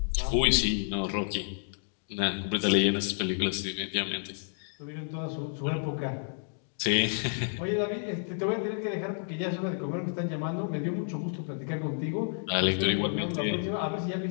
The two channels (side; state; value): right; silent; digital silence